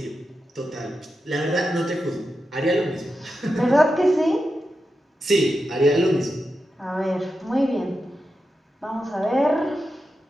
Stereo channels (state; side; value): normal; both; correlation 0.89